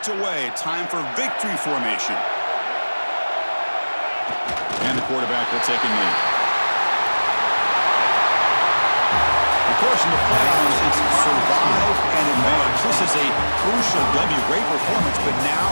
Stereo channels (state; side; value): inverted; both; correlation -1.00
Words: away. Time for victory formation. And the quarterback will take a knee. Of course, in the playoffs, it's survive and advance. This is a crucial W. Great performance, but now